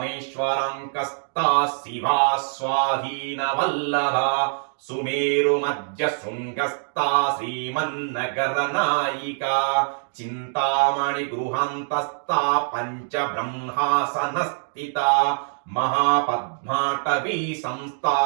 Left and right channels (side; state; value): left; silent; digital silence